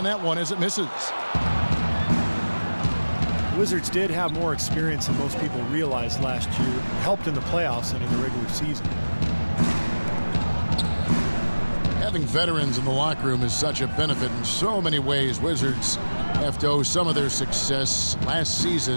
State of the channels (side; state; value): both; inverted; correlation -1.00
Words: that one as it misses. Wizards did have more experience than most people realized last year. Helped in the playoffs and in the regular season. Having veterans in the locker room is such a benefit in so many ways. Wizards have to owe some of their success last